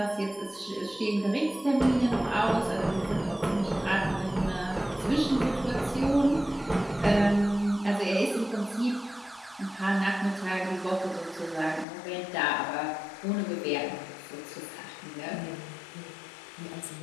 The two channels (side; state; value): right; drops out; at 11.9 s